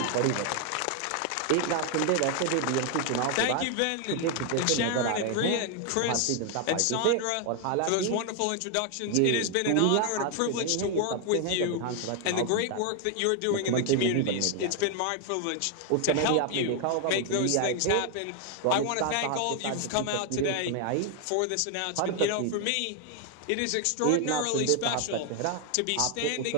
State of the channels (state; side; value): different; both; correlation 0.00